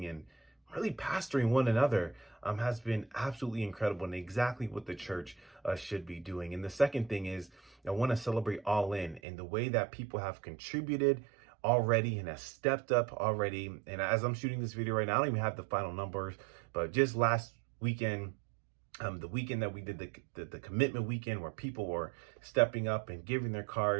and really pastoring one another has been absolutely incredible, and exactly what the church should be doing. And the second thing is, I want to celebrate All In and the way that people have contributed already and have stepped up already. And as I'm shooting this video right now, I don't even have the final numbers, but just last weekend, the weekend that we did the commitment weekend, where people were stepping up and giving their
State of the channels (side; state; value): left; drops out; at 9.2 s